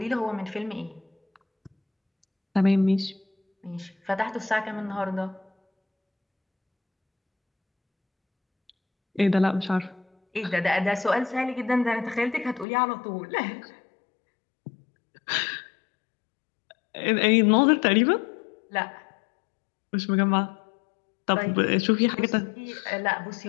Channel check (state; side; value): drops out; right; at 12.7 s